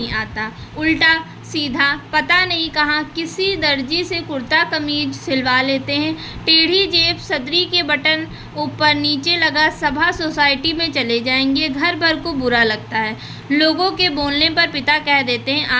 आता। उल्टा सीधा पता नहीं कहाँ किसी दर्जी से कुर्ता कमीज सिलवा लेते हैं। टेढ़ी जेब, सदरी के बटन ऊपर नीचे लगा, सभा सोसाइटी में चले जाएंगे। घर भर को बुरा लगता है। लोगों के बोलने पर पिता कह देते हैं,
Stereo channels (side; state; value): both; identical; correlation 1.00